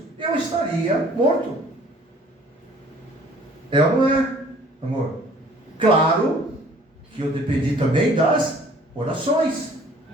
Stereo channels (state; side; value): normal; both; correlation 0.54